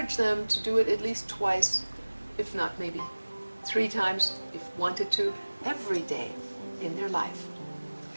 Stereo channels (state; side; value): inverted; both; correlation -1.00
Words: them to do it at least twice, if not maybe 3 times, if wanted to, every day in their life.